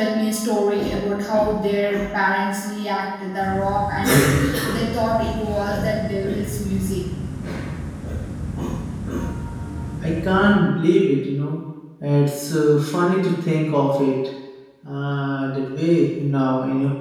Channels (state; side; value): identical; both; correlation 1.00